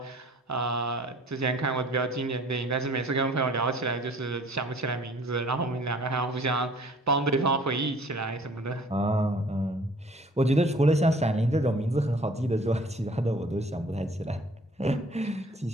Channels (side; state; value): both; normal; correlation 0.53